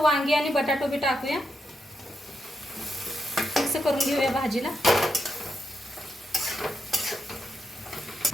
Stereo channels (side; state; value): both; normal; correlation 0.84